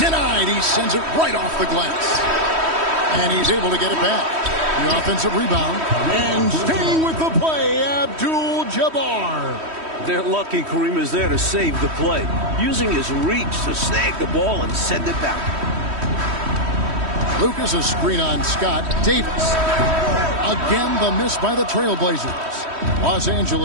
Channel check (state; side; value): late; left; 3.1 ms